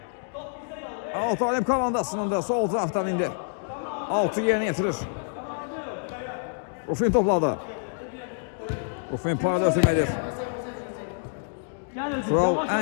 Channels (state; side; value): silent; right; digital silence